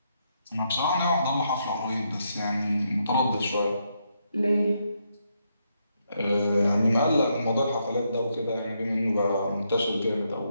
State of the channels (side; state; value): both; inverted; correlation -0.79